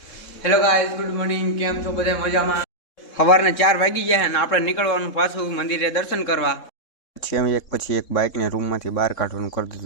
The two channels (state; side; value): late; right; 3.7 ms